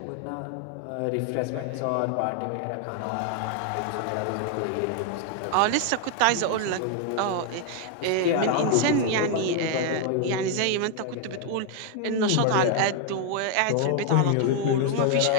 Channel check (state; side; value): different; both; correlation 0.00